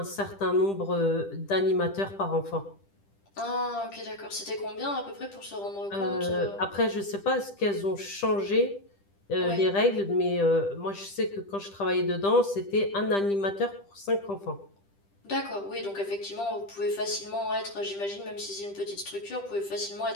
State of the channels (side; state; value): right; late; 10 ms